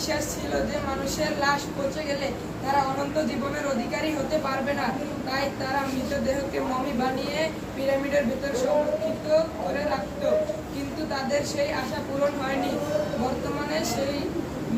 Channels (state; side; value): identical; both; correlation 1.00